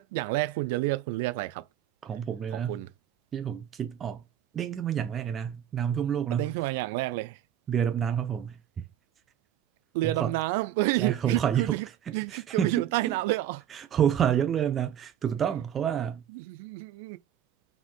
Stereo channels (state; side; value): quieter; left; 10.7 dB